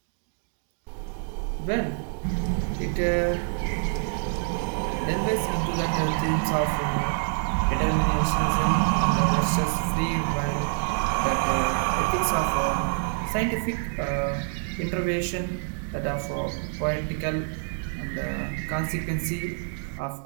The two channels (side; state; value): left; silent; 57 dB below the other